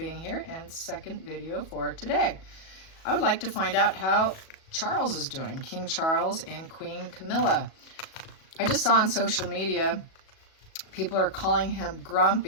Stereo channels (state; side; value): late; right; 37 ms